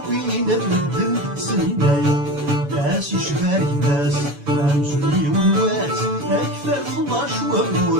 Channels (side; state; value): left; late; 7.0 ms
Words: الردن سنينايا ناس يشباري ناس مامزولي ونوات أكثر 12